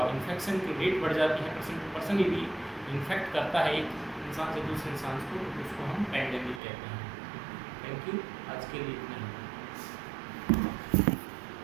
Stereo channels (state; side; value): drops out; left; at 6.6 s